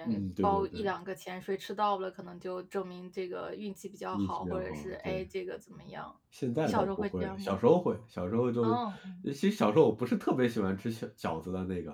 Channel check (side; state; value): both; identical; correlation 1.00